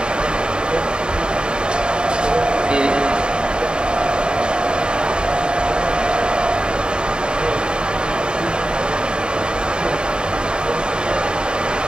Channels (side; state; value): left; late; 0.050 ms